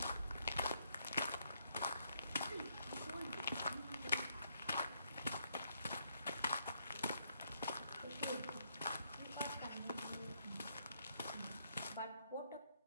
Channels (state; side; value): inverted; both; correlation -0.74